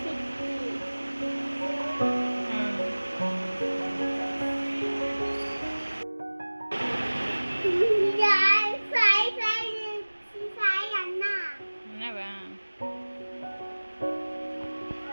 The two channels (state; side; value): inverted; both; correlation -1.00